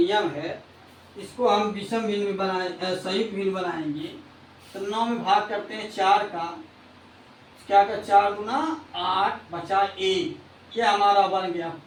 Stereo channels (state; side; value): identical; both; correlation 1.00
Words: है। इसको हम विषम भिन्न में बनाए, संयुक्त भिन्न बनाएंगे तो 9 में भाग करते हैं 4 का, क्या का 4 गुना 8 बचा 1, ये हमारा बन गया